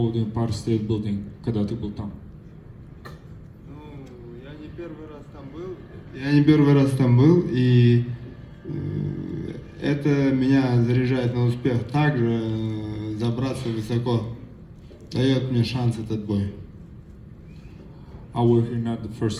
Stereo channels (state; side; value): identical; both; correlation 1.00